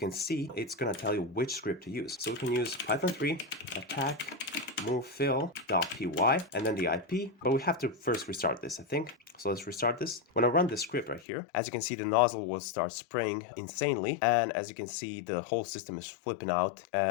see it's going to tell you which script to use. So we can use Python 3 attack move fill.py and then the IP. But we have to first restart this, I think. So let's restart this. When I run this script right here, as you can see, the nozzle will start spraying insanely. And as you can see, the whole system is flipping out.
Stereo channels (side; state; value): right; drops out; at 11.2 s